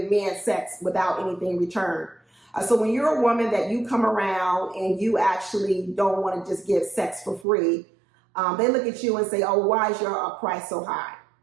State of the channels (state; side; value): drops out; left; at 7.5 s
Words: men sex without anything in return. So when you're a woman that you come around and you actually don't want to just give sex for free, they look at you and say, oh, why is your price so high?